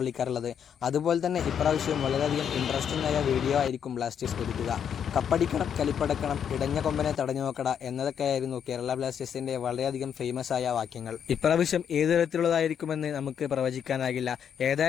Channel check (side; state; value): right; quieter; 8.2 dB